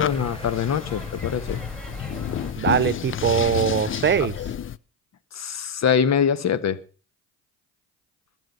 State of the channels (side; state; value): both; normal; correlation -0.03